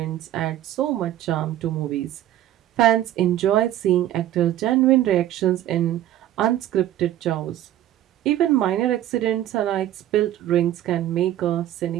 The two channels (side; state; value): left; quieter; 12.6 dB